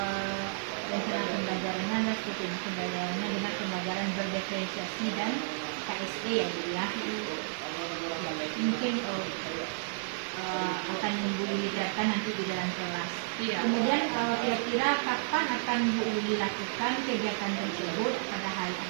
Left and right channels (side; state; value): left; silent; digital silence